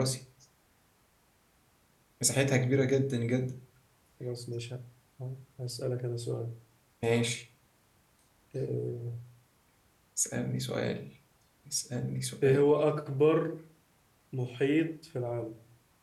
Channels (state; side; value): identical; both; correlation 1.00